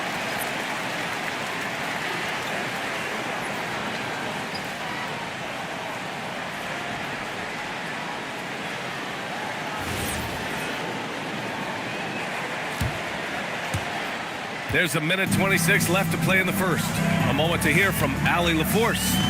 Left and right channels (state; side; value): identical; both; correlation 1.00